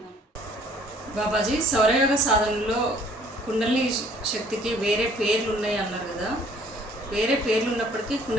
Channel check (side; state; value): both; normal; correlation 0.57